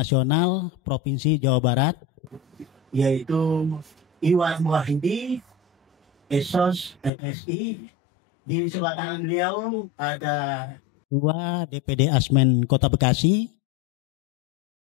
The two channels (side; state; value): right; drops out; at 7.1 s